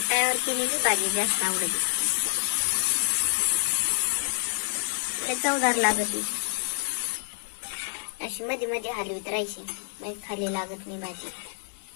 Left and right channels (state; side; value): silent; right; 59 dB below the other